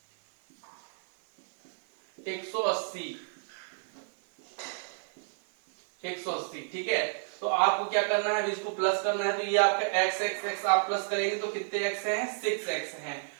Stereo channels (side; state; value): left; silent; 58 dB below the other